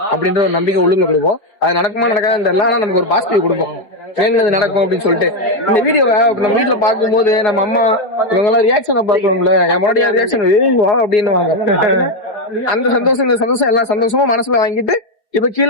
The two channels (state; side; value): late; right; 4.8 ms